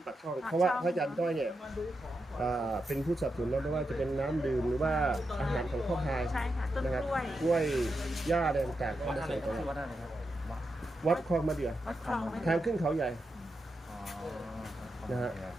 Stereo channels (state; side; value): normal; both; correlation 0.86